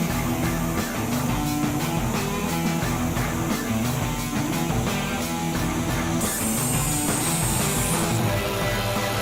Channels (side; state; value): both; identical; correlation 1.00